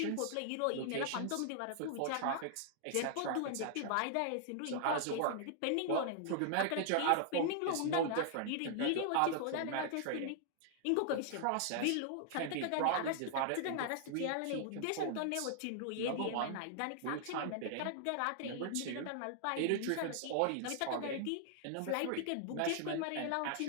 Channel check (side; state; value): both; different; correlation 0.00